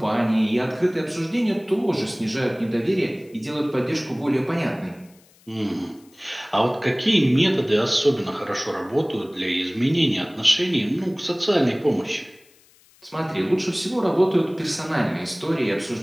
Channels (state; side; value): noise; left; hiss, 30 dB below the sound